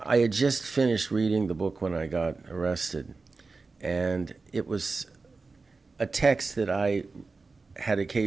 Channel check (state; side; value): quieter; left; 4.1 dB